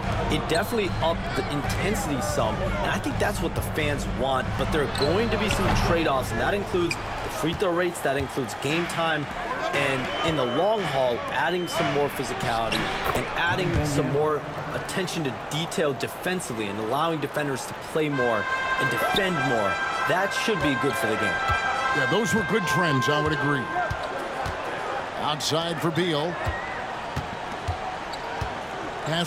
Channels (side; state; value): both; identical; correlation 1.00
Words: It definitely upped the intensity some, and I think that's what the fans want, but there are going to be some trade-offs, and that includes the free throw rates, that includes game time, and in the long haul, adding some more physicality and adding some more attention to detail defensively and allowing defenders to play more and defend more. That should be good for the game. Yeah, those were good trends, I would agree. Outside for Beal.